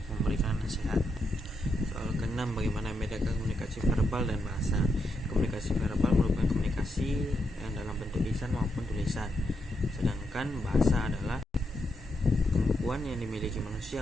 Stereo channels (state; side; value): normal; both; correlation 0.82